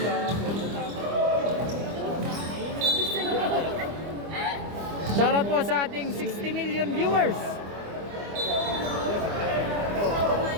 Shoutout po sa ating 60 million viewers.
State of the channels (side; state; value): left; late; 25 ms